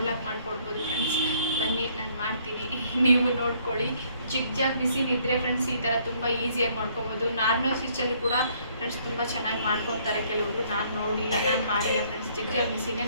ಮಾಡಿಕೊಡ್ಬೋದು ಫ್ರೆಂಡ್ಸ್. ಬನ್ನಿ, ನಾನು ಮಾಡ್ತೀನಿ, ನೀವು ನೋಡ್ಕೊಳ್ಳಿ. ಜಿಗ್ ಮಿಷಿನ್ ಇದ್ದರೆ ಫ್ರೆಂಡ್ಸ್ ಈ ಥರ ತುಂಬ ಈಸಿಯಾಗಿ ಮಾಡ್ಕೊಬೋದು. ನಾರ್ಮಲ್ ಸ್ಟಿಚಲ್ಲಿ ಕೂಡ ಫ್ರೆಂಡ್ಸ್ ತುಂಬ ಚೆನ್ನಾಗಿ ಮಾಡ್ಕೊತಾರೆ ಕೆಲವರು. ನಾನು ನೋಡಿಲ್ಲ, ನಾನು ಮಾಡಿಲ್ಲ ಫ್ರೆಂಡ್ಸ್. ಜಿಗ್ ಮಿಷಿನೇ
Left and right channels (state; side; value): inverted; both; correlation -0.64